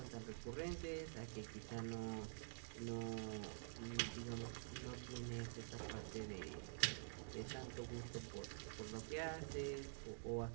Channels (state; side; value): silent; left; digital silence